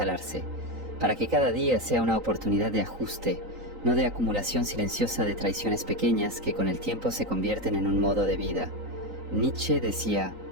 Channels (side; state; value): left; late; 3.9 ms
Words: para que cada día sea una oportunidad de ajuste, no de acumulación silenciosa de traiciones pequeñas que con el tiempo se convierten en un modo de vida. Nietzsche decía: